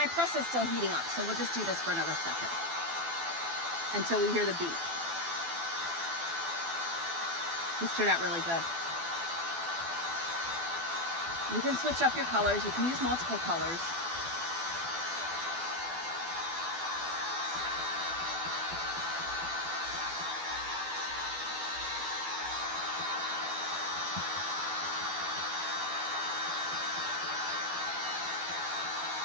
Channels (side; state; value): left; late; 12 ms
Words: press is still heating up, so we'll just do this for another second until we hear the beep. This turned out really good. You can switch up your colors. You can use multiple colors.